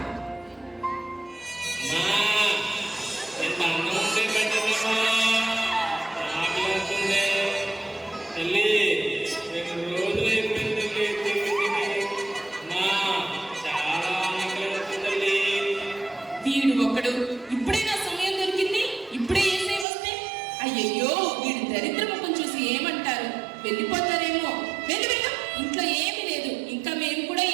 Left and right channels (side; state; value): left; drops out; at 19.9 s